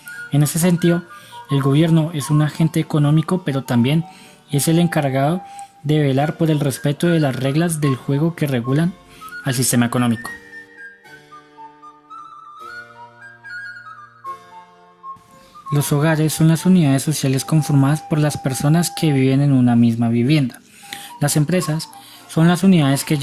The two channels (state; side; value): identical; both; correlation 1.00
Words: En ese sentido, el gobierno es un agente económico, pero también es el encargado de velar por el respeto de las reglas del juego que regulan al sistema económico. Los hogares son las unidades sociales conformadas por las personas que viven en una misma vivienda. Las empresas son las unidades que